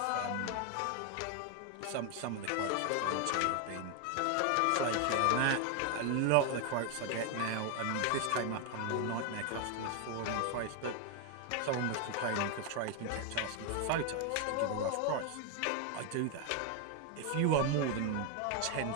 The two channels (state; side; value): different; both; correlation 0.01